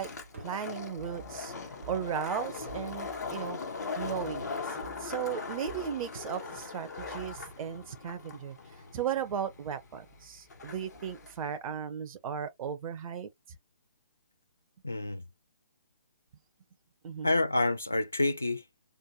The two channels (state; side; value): inverted; both; correlation -0.50